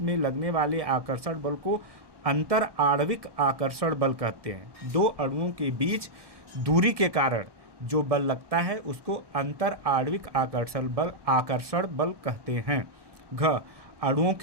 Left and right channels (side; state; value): left; late; 1.1 ms